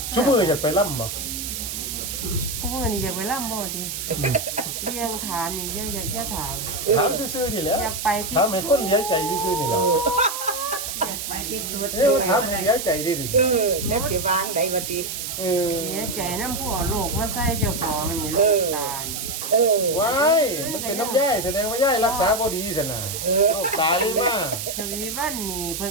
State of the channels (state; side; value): noise; right; hiss, 5 dB below the sound